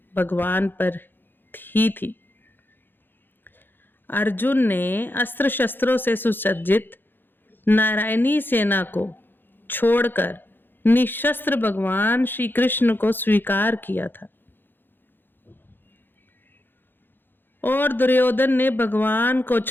भगवान पर ही थी। अर्जुन ने अस्त्र शस्त्रों से सुसज्जित नारायणी सेना को छोड़कर निशस्त्र भगवान श्री कृष्ण को स्वीकार किया था और दुर्योधन ने भगवान को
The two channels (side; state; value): right; late; 0.098 ms